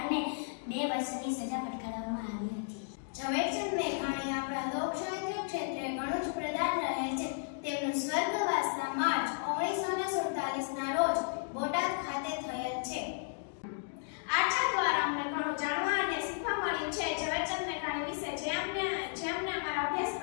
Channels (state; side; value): silent; right; digital silence